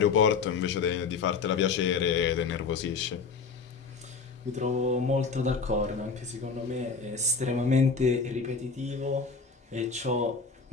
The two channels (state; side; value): quieter; right; 5.1 dB